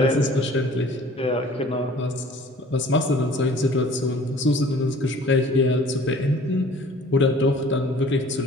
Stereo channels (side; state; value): both; normal; correlation 0.49